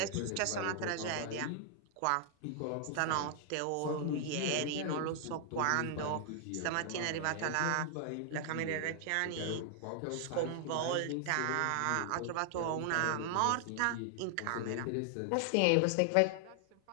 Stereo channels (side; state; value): both; different; correlation 0.00